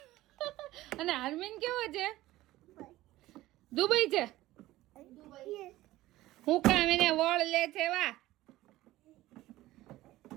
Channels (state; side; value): quieter; left; 16.5 dB